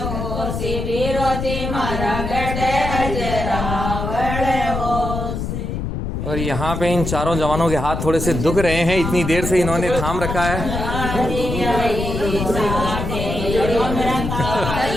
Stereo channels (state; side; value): noise; left; rumble, 4 dB below the sound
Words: मारा गढ़ अजरावड़ और यहाँ पे इन चारों जवानों के हाथ थोड़े से दुख रहे हैं, इतनी देर से इन्होंने थाम रखा है।